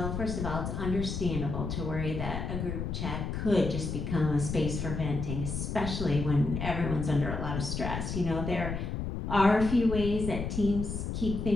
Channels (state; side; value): noise; left; rumble, 4 dB below the sound